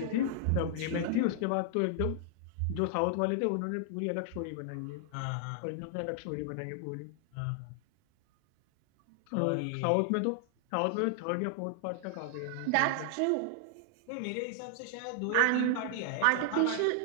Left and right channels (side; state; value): both; different; correlation 0.00